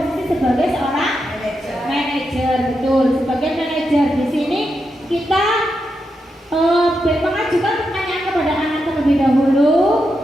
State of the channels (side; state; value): both; normal; correlation 0.85